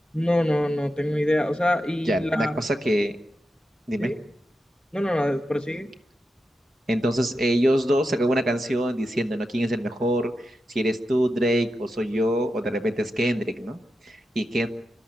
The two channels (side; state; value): both; normal; correlation 0.89